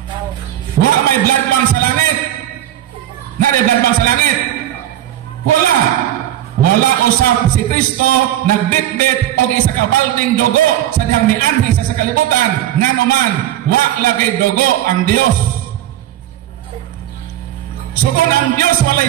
Wa may blood bank sa langit. Nari blood bank sa langit. Wala. Wala usap si Kristo nagbitbit og isa ka balding dugo sa dihang mianhi sa kalibutan. Nganuman, wa lagay dugo ang Dios. So kung ang Diyos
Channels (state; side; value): quieter; left; 12.6 dB